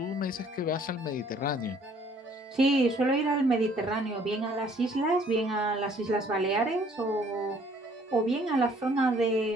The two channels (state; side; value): normal; both; correlation 0.59